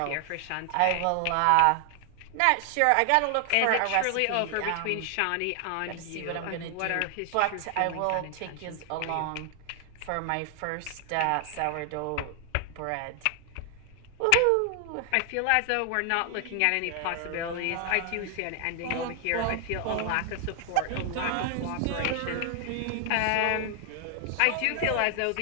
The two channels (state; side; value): different; both; correlation 0.00